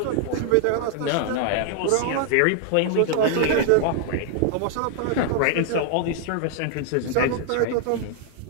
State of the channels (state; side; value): different; both; correlation 0.00